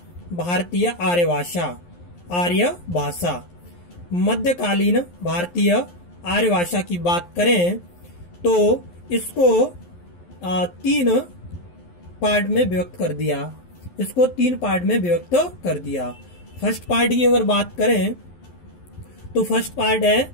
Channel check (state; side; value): late; right; 11 ms